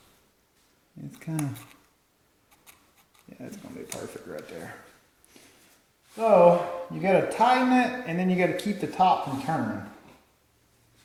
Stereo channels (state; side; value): identical; both; correlation 1.00